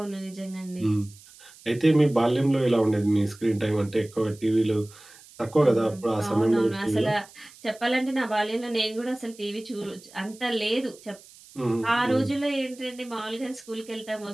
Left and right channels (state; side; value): noise; right; hiss, 22 dB below the sound